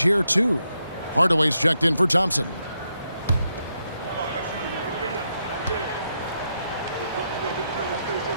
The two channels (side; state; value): both; inverted; correlation -0.81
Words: here, too. Hardaway's checked in for Thompson.